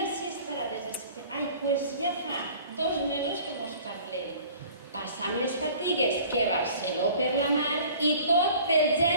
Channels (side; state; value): both; inverted; correlation -0.48